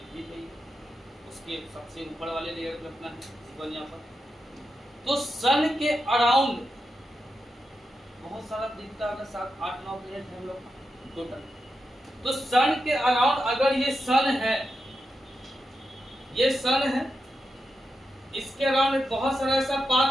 पे ही, उसके सबसे ऊपर वाले लेयर पे अपना जीवन यहाँ पर, तो सन के अराउंड बहुत सारा दिखता है, 7, 8, 9 प्लेनेट है हम लोग टोटल। तो सन के अराउंड अगर ये सन है, ये सन है, इसके अराउंड बहुत सारा ऐसा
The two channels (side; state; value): both; normal; correlation 0.87